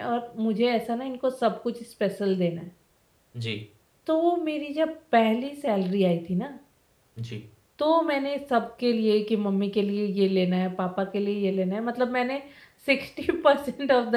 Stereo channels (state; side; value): identical; both; correlation 1.00